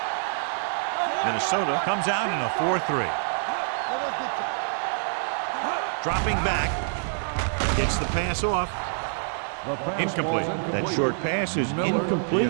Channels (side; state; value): left; silent; digital silence